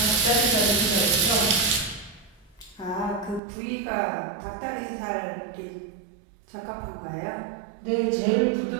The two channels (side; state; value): left; drops out; at 3.4 s